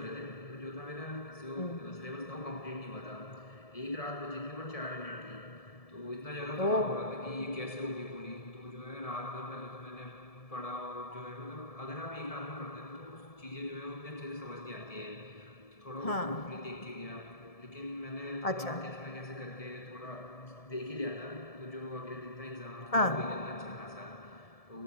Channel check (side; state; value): right; late; 1.7 ms